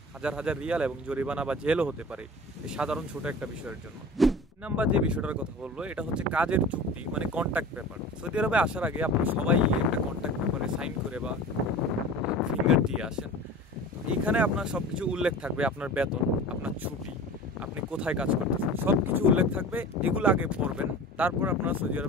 হাজার রিয়াল এবং জরিমানা বা জেলও হতে পারে এই সাধারণ ছোট একটা বিষয়ের জন্য। নাম্বার যে বিষয়টার কথা বলবো এটা হচ্ছে কাজের চুক্তি, মানে কন্ট্রাক্ট পেপার। সৌদি আরবে আসার আগে আপনারা সবাই একটা কন্ট্রাক্ট পেপারে সাইন করে বা ফিঙ্গার দিয়ে আসেন। এইখানে আপনার সব কিছু উল্লেখ থাকবে, আপনার বেতন, আপনার ছুটি, আপনি কোথায় কাজ করতেছেন, সব কিছু উল্লেখ থাকবে। এগুলো আগে পড়বেন, তারপর আপনারা সৌদি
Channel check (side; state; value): both; normal; correlation 0.37